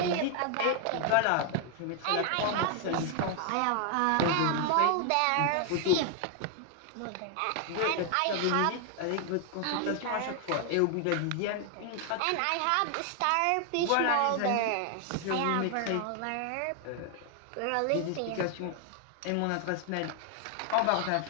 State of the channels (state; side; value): different; both; correlation 0.00